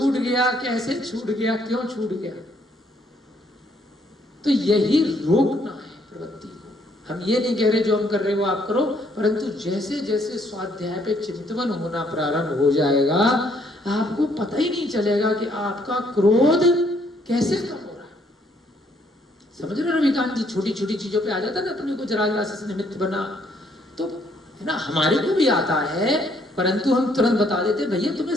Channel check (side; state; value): both; normal; correlation 0.68